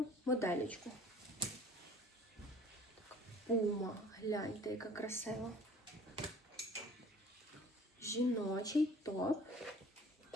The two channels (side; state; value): both; normal; correlation 0.49